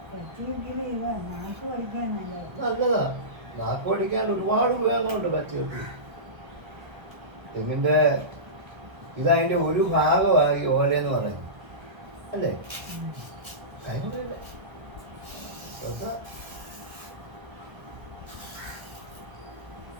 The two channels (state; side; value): late; left; 1.3 ms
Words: നല്ലതാ. നാക്ക് പഠിക്കാൻ ഒരുപാട് ഉപയോഗങ്ങളുണ്ട് പച്ചവെട്ടി. തെങ്ങിൻ്റെ ഇതതിൻ്റെ ഒരു ഭാഗമാണ് ഈ ഓലയെന്ന് പറയുന്നത് അല്ലേ. കൈമുറിയില്ല